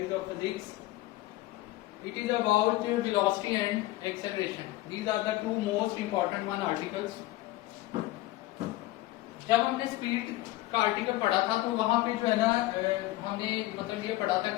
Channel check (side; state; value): right; quieter; 17.2 dB